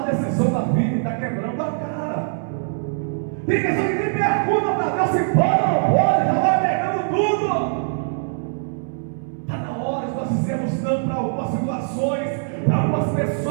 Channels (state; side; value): silent; left; 64 dB below the other